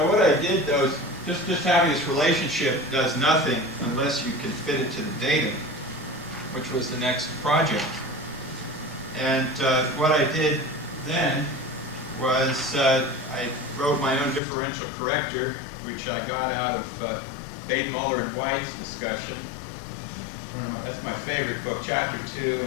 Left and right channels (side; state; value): right; drops out; at 14.4 s